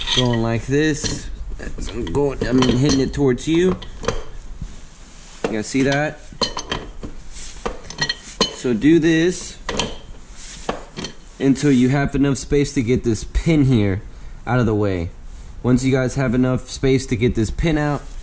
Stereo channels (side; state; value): both; identical; correlation 1.00